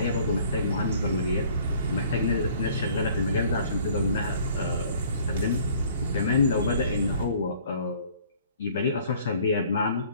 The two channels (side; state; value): both; inverted; correlation -0.55